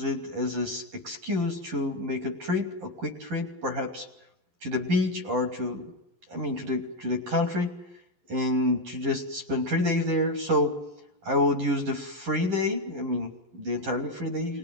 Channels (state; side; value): late; left; 11 ms